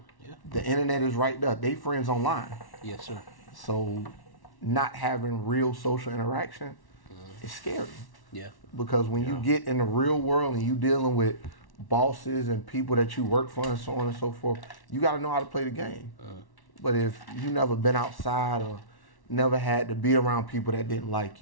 Yeah. The internet is right there. They friends online. Yes, sir. So not having real social interaction is scary. Yeah. Because when you get in the real world and you dealing with bosses and people that you work for and so on and so forth, you got to know how to play the game. But if you never been outside or never had to be around people that didn't like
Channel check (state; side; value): late; right; 1.1 ms